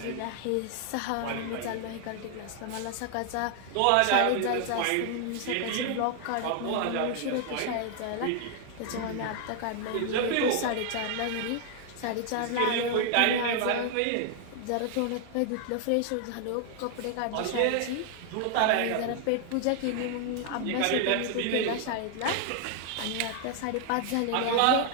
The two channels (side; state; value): both; different; correlation 0.00